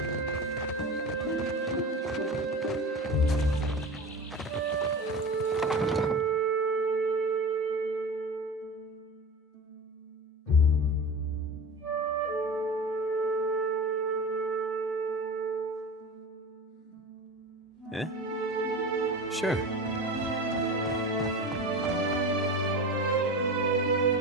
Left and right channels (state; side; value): normal; both; correlation 0.31